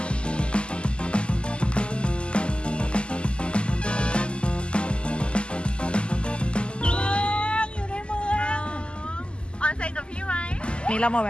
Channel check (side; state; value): right; late; 0.051 ms